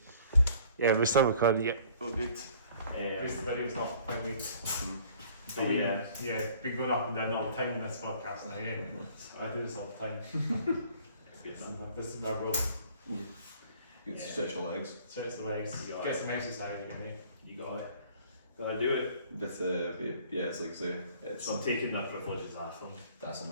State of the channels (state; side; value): inverted; both; correlation -0.54